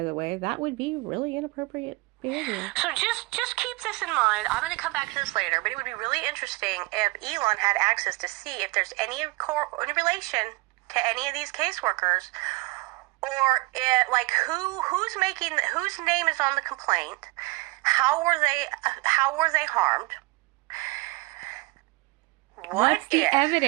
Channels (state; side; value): quieter; left; 24.3 dB